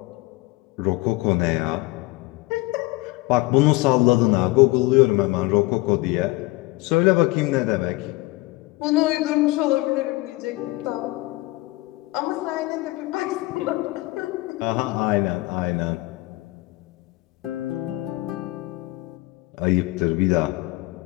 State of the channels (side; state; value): right; quieter; 21.1 dB